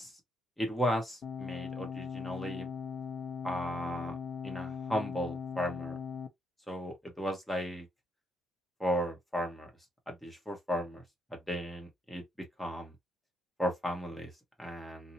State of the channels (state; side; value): normal; both; correlation 0.76